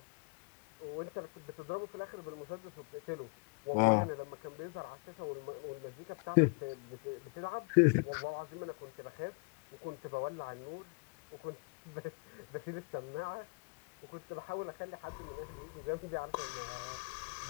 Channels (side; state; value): right; quieter; 33.4 dB